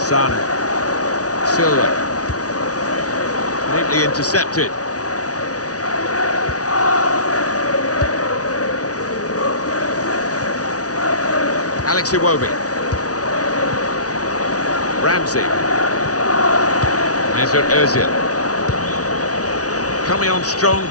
Silva. Neatly intercepted. Alex Iwobi. Ramsey. Mesut Ozil. Coming on strong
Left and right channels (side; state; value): right; late; 0.68 ms